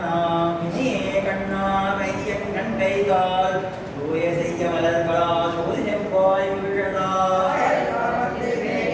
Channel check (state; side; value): identical; both; correlation 1.00